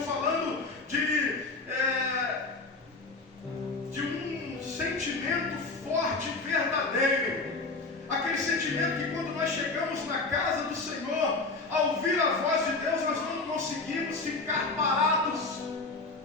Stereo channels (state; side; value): quieter; right; 3.6 dB